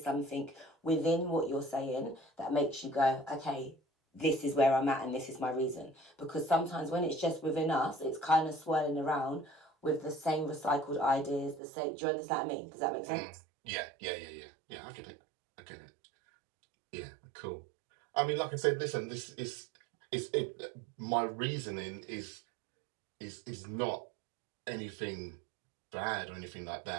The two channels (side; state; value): left; drops out; at 11.6 s